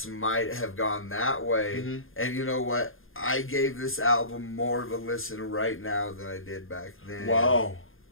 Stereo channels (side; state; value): right; late; 0.60 ms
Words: might have gone that way. And you know what? I gave this album more of a listen right now than I did back then. Wow.